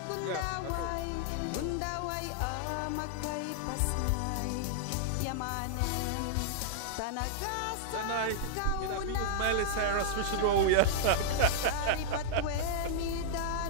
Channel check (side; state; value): both; different; correlation -0.02